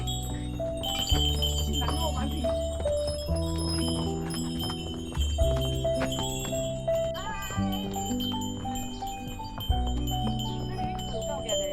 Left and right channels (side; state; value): both; identical; correlation 1.00